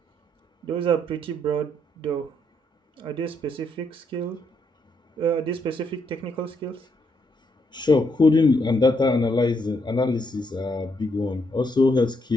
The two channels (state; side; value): normal; both; correlation 0.76